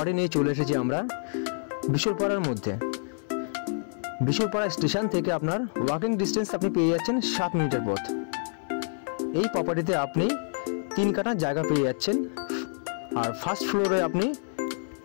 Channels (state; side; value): silent; right; 60 dB below the other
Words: নিয়ে চলে এসেছি আমরা বিশরপাড়ার মধ্যে। বিশরপাড়া স্টেশন থেকে আপনার ওয়াকিং ডিস্টেন্স আপনি পেয়ে যাচ্ছেন 7 মিনিটের পথ। এই প্রপার্টিতে আপনি 3 কাঠা জায়গা পেয়ে যাচ্ছেন, আর ফার্স্ট ফ্লোরে আপনি